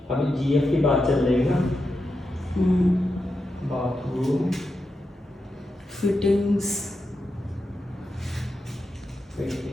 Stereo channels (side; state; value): both; normal; correlation 0.88